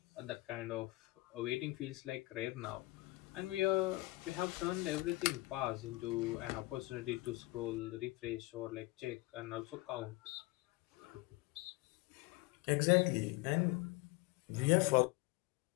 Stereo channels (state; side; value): quieter; right; 21.0 dB